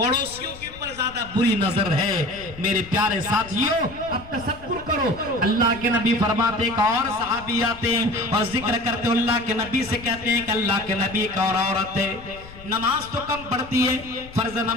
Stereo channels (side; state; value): left; noise; rumble, 18 dB below the sound